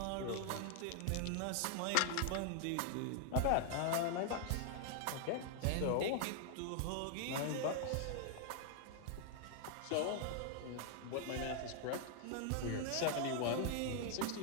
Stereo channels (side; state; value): both; different; correlation 0.00